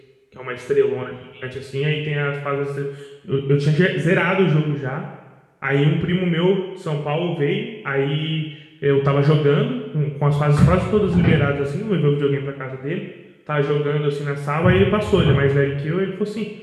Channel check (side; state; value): both; identical; correlation 1.00